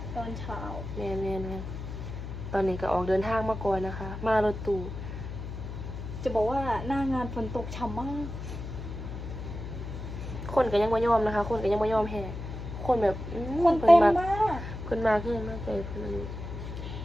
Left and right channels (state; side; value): noise; left; hum, 8 dB below the sound